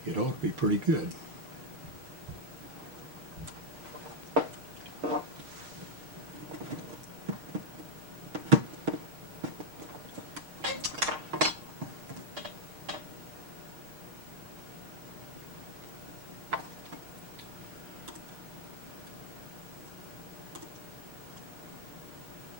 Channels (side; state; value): left; late; 6.5 ms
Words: it ought to be pretty good.